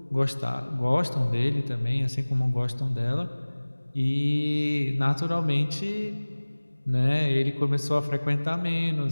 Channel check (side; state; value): both; inverted; correlation -1.00